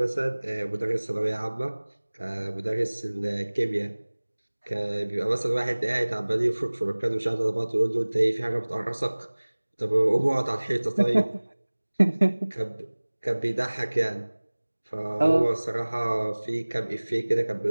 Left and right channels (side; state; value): both; inverted; correlation -1.00